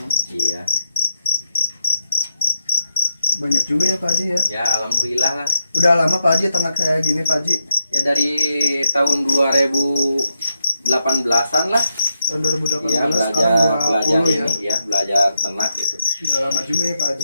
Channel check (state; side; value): inverted; both; correlation -0.83